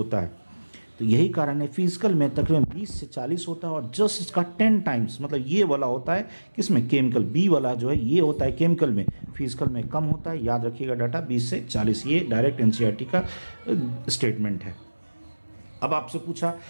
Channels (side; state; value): both; inverted; correlation -1.00